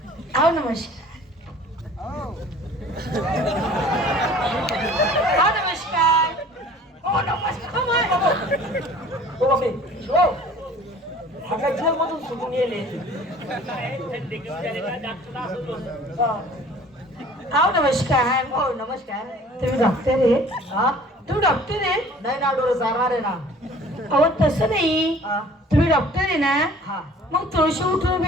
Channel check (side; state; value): both; normal; correlation 0.49